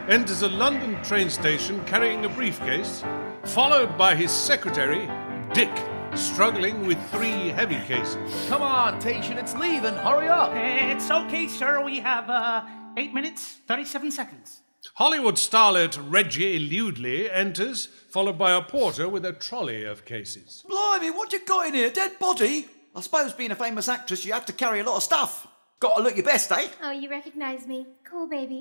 enters a London train station carrying a briefcase, followed by his secretary, Dick, struggling with 3 heavy cases. Come on, Tation, it's leaving. Hurry up. It's okay, sir. We have 8 minutes, 37 seconds. Hollywood starlet Reggie Ludley enters, followed by a porter with a trolley of cases. Blimey, what you got in here? Dead body? I suppose being a famous actress, you have to carry a lot of stuff. Got to look your best, eh? Oh, you recognize me. Cool,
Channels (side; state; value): both; inverted; correlation -1.00